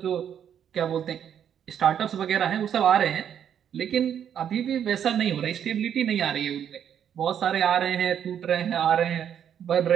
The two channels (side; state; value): left; quieter; 9.0 dB